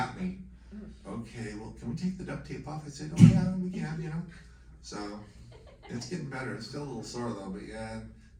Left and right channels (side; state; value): both; identical; correlation 1.00